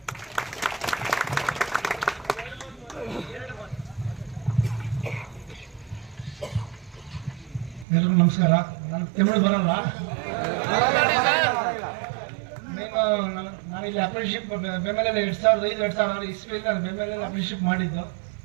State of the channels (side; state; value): left; drops out; at 7.9 s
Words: ಎಲ್ರಿಗೂ ನಮಸ್ಕಾರ. ನಾನು ತಮಿಳು ಬರಲ್ಲ. ನಾನಿಲ್ಲಿ ಅಪ್ರೆಂಟಿಸ್ಶಿಪ್ ಬೆಂಬಲ 2005-2006 ಇಸ್ವಿಯಲ್ಲಿ ನಾನು ಬೆಂಬಲ ಅಪ್ರೆಂಟಿಸ್ಶಿಪ್ ಮಾಡಿದ್ದು.